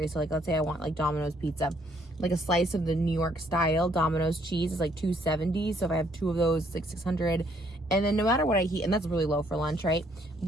So like, let's say I want like Domino's pizza. Like a slice of the New York style Domino's cheese is like 270. So if I have 2 of those, it's like 600. And then no matter what I eat, and that's really low for lunch, right?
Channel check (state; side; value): normal; both; correlation 0.67